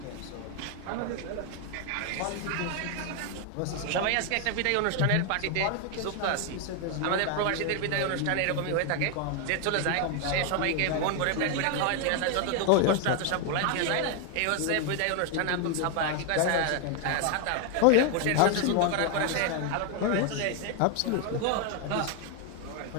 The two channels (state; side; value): different; both; correlation 0.01